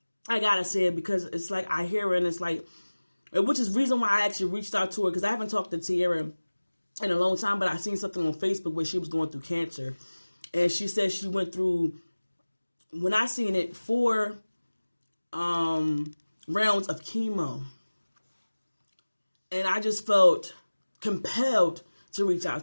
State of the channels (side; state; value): both; inverted; correlation -1.00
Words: it because it's like I hear her and it's like, which is the reason why I actually reached out to her, because I haven't talked to Tiera in a long time, but I seen something on Facebook where she was going through cancer. And she said she went through, when I seen it, 4 rounds of chemo. And I just felt compelled to reach